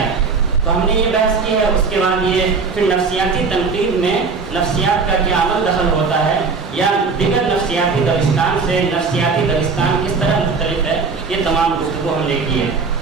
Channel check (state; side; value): quieter; left; 4.7 dB